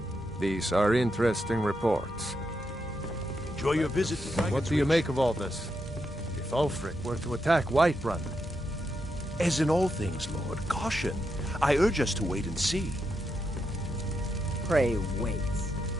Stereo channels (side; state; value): both; normal; correlation 0.83